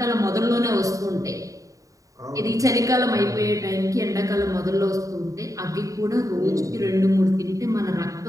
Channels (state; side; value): late; left; 0.16 ms